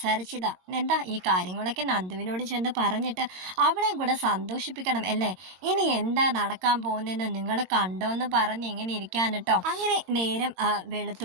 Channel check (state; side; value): late; left; 22 ms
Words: എന്താ ഈ കാര്യങ്ങളൊക്കെ നന്ദുവിനോട് ചെന്ന് പറഞ്ഞിട്ട് അവളെയും കൂടെ സന്തോഷിപ്പിക്കണം അല്ലേ? ഇനി എന്താ നടക്കാൻ പോകുന്നതെന്ന് നിങ്ങൾ കണ്ടോന്ന് പറഞ്ഞ് ഇങ്ങനെ ഇരിക്കാൻ കേട്ടോ. അങ്ങനെ നേരം